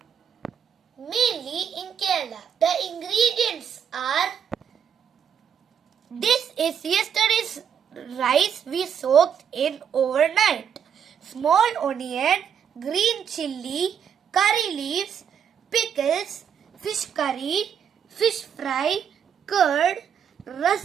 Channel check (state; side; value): quieter; left; 8.0 dB